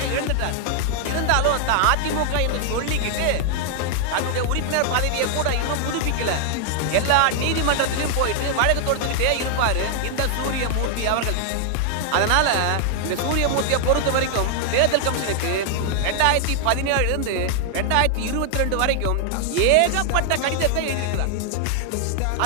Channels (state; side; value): different; both; correlation 0.00